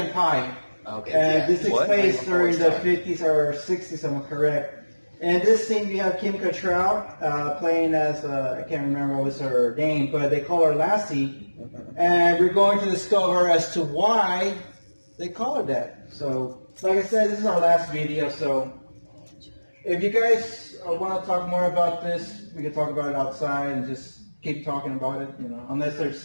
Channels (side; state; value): both; inverted; correlation -1.00